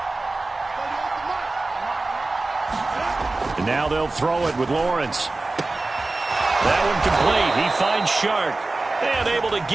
And now they'll throw it with Lawrence. That one complete. He finds Shark. And able to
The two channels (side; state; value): left; quieter; 3.2 dB